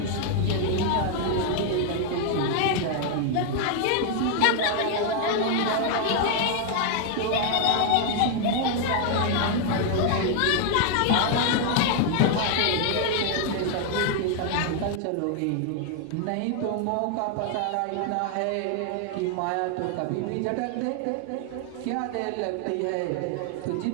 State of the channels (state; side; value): different; both; correlation 0.00